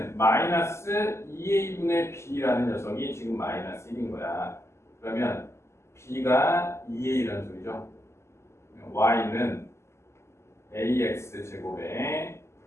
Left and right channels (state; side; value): late; right; 0.13 ms